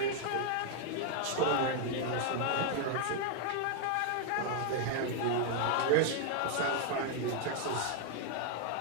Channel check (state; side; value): different; both; correlation 0.00